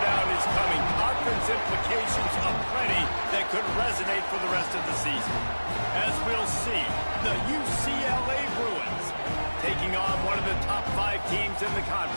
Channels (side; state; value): both; inverted; correlation -1.00